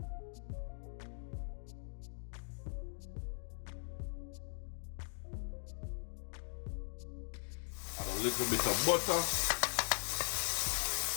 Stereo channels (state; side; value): silent; right; digital silence